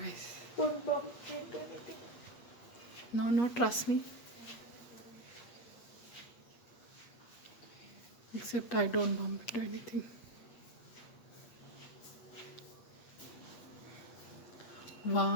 Don't bump into anything. No, trust me. Except I don't bump into anything.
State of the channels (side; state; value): right; late; 8.4 ms